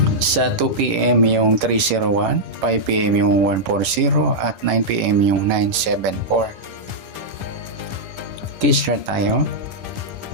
sa 2 p.m. yung 301, 5 p.m. yung 140 at 9 p.m. yung 974. Start tayo.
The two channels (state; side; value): late; left; 11 ms